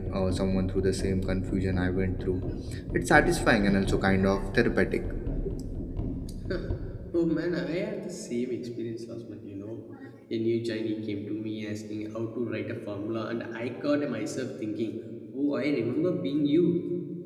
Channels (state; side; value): identical; both; correlation 1.00